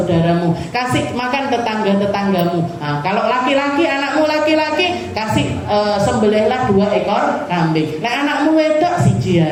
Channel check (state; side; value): identical; both; correlation 1.00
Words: kasih makan tetangga-tetanggamu. Nah, kalau laki-laki, anakmu laki-laki, kasih sembelihlah 2 ekor kambing. Nah, anakmu wedok siji